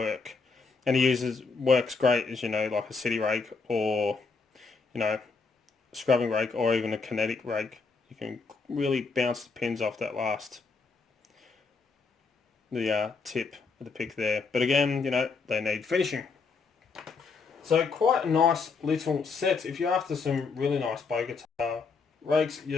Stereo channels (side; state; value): right; quieter; 4.7 dB